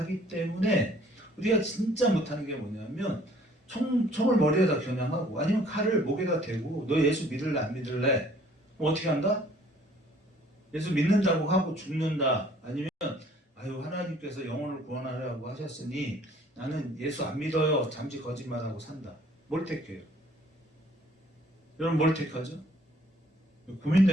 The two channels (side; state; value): both; normal; correlation 0.57